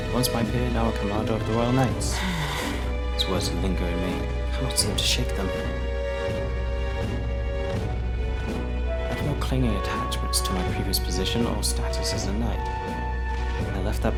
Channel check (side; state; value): both; identical; correlation 1.00